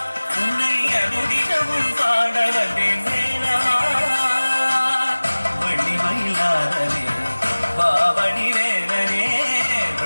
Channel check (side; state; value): both; inverted; correlation -1.00